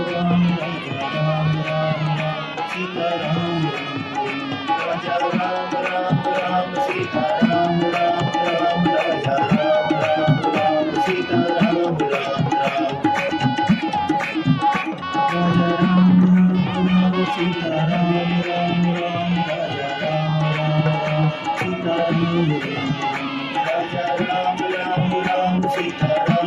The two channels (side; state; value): both; identical; correlation 1.00